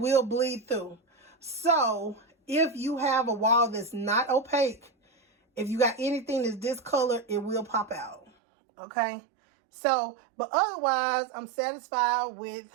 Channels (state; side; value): drops out; left; at 8.3 s